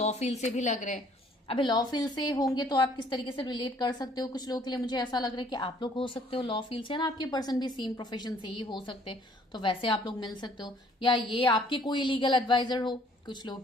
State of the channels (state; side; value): normal; both; correlation 0.60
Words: फील्ड से भी लग रहे हैं। अभी लॉ फील्ड से होंगे तो आप किस तरीके से रिलेट कर सकते हो, कुछ लोगों के लिए मुझे ऐसा लग रहा है कि आप लोग हो सकते हो लॉ फील्ड से ना, आपके पर्सन भी सेम प्रोफेशन से ही हो सकते हैं तो वैसे आप लोग मिल सकते हो, या ये आपके कोई लीगल एडवाइजर हो, कुछ लोगों